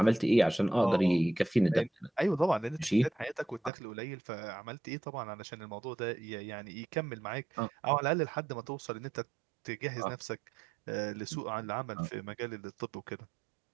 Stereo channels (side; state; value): left; drops out; at 3.7 s